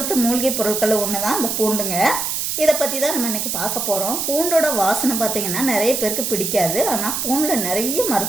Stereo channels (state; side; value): noise; right; hiss, 1 dB below the sound